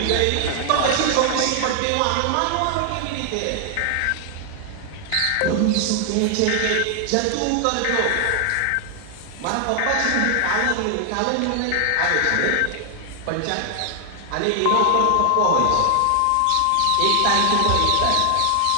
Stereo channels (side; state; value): both; different; correlation 0.00